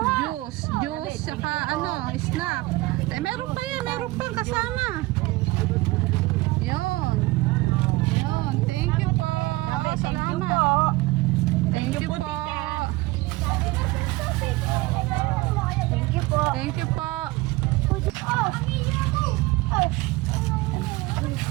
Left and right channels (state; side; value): quieter; left; 20.7 dB